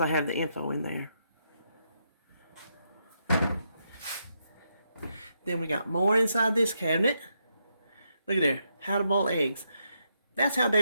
have the info in there. Then we got more inside this cabinet. Look at there, how to boil eggs. That's how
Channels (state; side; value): inverted; both; correlation -0.80